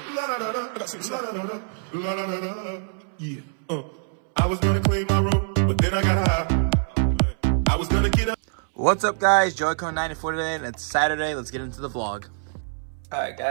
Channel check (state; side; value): silent; left; 62 dB below the other